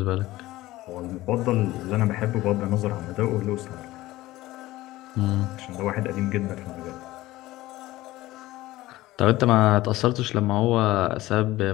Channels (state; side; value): quieter; right; 17.4 dB